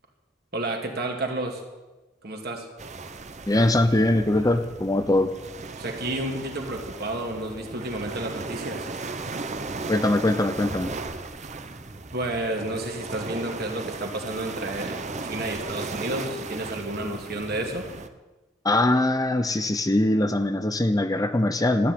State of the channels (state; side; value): normal; both; correlation 0.67